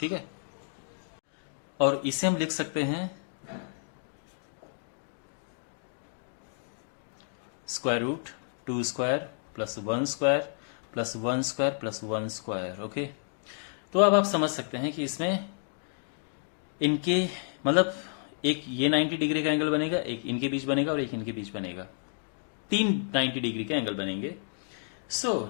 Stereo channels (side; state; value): right; silent; digital silence